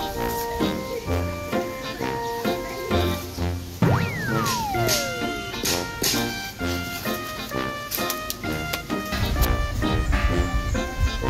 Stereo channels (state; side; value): identical; both; correlation 1.00